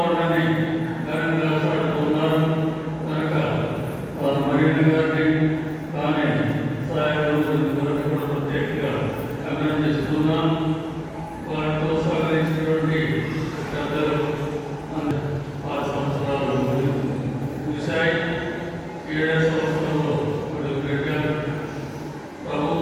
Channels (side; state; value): both; identical; correlation 1.00